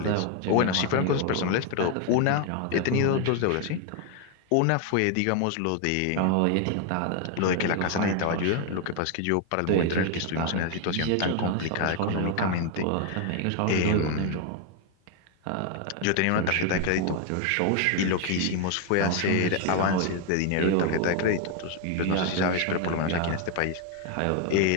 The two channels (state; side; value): different; both; correlation 0.01